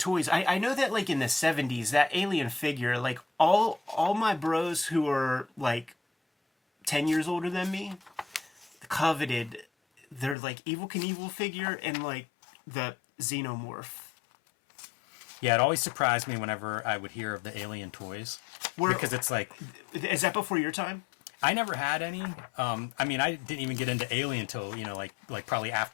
I know that like in the 70s, that alien figure, like all my bros who are like 10 years older than me coveted their like Evel Knievel figure and like the Xenomorph. Yeah, it always surprised me whenever I would hear of the alien toys. Because it's like... Is that before your time? I never had any. I mean, I didn't even get into Alien until, you know, like probably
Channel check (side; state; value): right; drops out; at 10.4 s